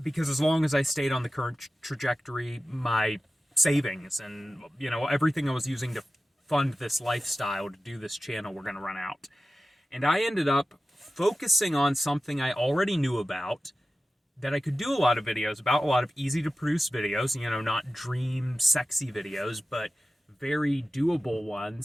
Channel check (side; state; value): both; normal; correlation 0.94